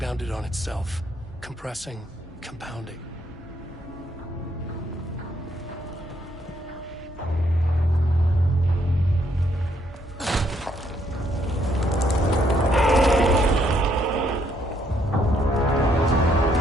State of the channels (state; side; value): normal; both; correlation 0.71